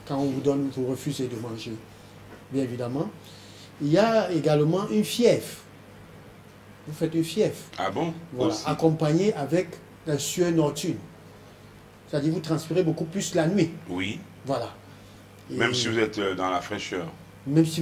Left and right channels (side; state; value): both; identical; correlation 1.00